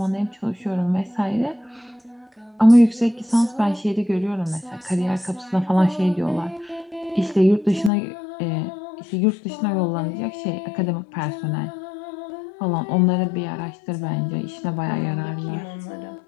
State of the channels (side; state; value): right; drops out; at 7.9 s